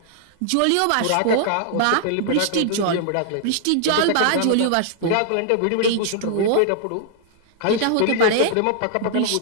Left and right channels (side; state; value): both; different; correlation -0.01